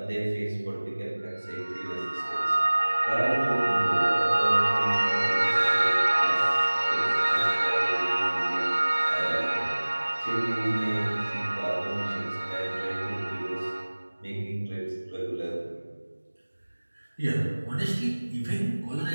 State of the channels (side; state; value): both; inverted; correlation -1.00